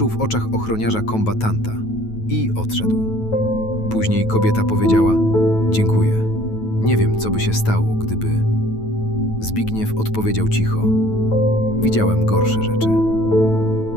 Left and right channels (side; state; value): right; late; 9.2 ms